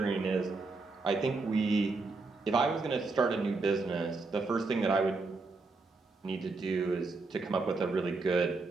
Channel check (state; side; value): quieter; left; 3.8 dB